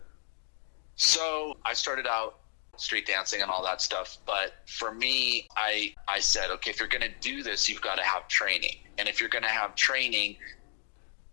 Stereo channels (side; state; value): right; silent; digital silence